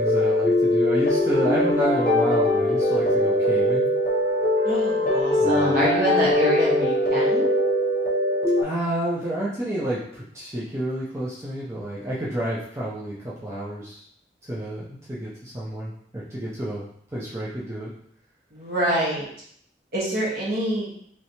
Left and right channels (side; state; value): both; normal; correlation 0.48